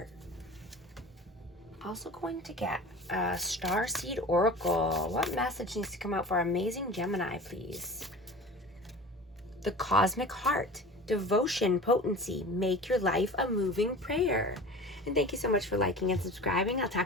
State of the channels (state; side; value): normal; both; correlation 0.37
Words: Also going to get a Starseed Oracle. What message needs to come out for amazing Gemini, please? The Cosmic Heart. Devotion, potency. Make your life a moving prayer. And thank you so much for liking and subscribing. I'll